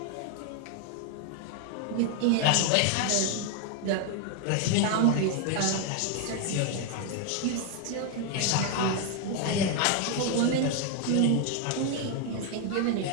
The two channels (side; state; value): both; different; correlation 0.00